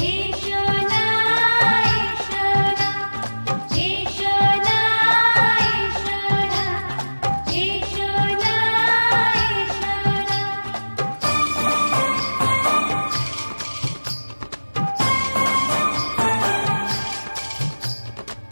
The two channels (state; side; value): inverted; both; correlation -1.00